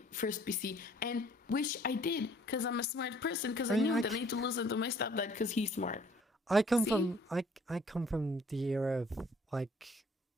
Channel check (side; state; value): both; normal; correlation 0.58